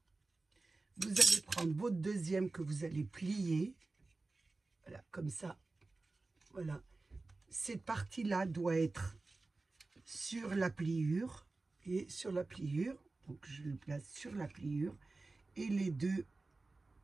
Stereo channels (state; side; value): quieter; left; 3.4 dB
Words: Vous allez prendre votre deuxième que vous allez plier, voilà, comme ça, voilà. Cette partie-là doit être sur la pliure, et sur la pliure, donc je le place sur la pliure, et les deux,